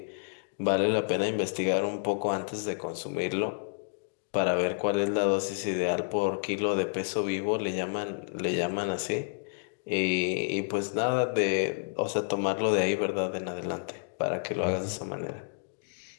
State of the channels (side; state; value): right; silent; digital silence